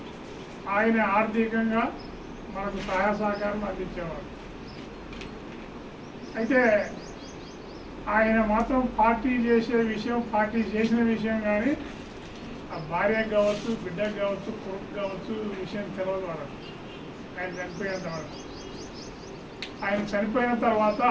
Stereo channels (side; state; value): both; identical; correlation 1.00